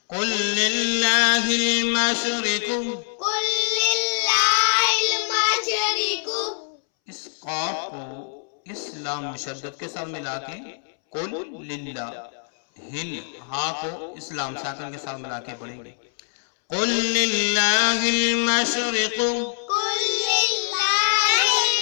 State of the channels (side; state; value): right; silent; 63 dB below the other